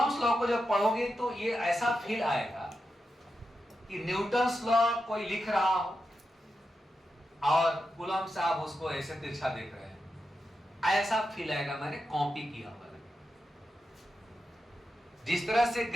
लॉ को जब पढ़ोगे तो ये ऐसा फील आएगा कि न्यूटन्स लॉ कोई लिख रहा हो और कूलम्ब साहब उसको ऐसे तिरछा देख रहे हैं, ऐसा फील आएगा मैंने कॉपी किया हुआ। जिस तरह से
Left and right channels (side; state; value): both; normal; correlation 0.88